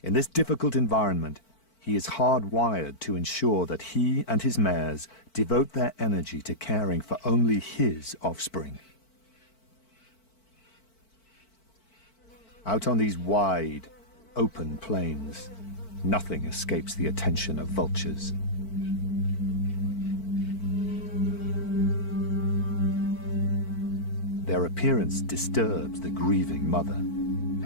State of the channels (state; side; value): late; right; 4.5 ms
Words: In this difficult environment, he is hardwired to ensure that he and his mares devote their energy to caring for only his offspring. Out on these wide, open plains, nothing escapes the attention of vultures. Their appearance disturbs the grieving mother.